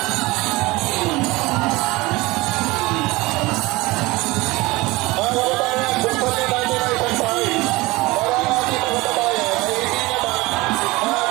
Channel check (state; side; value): quieter; left; 21.7 dB